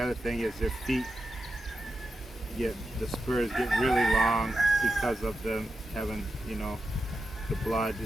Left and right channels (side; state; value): both; normal; correlation 0.89